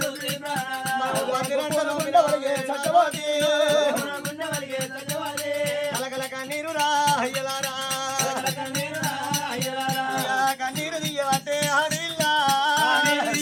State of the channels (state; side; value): identical; both; correlation 1.00